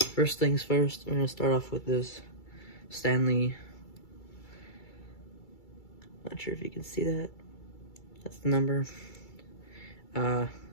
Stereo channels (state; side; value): late; right; 2.3 ms